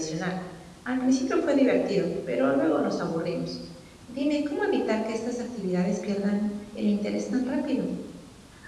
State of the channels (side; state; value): both; identical; correlation 1.00